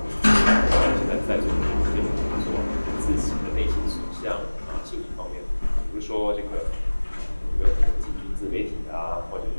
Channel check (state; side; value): inverted; both; correlation -1.00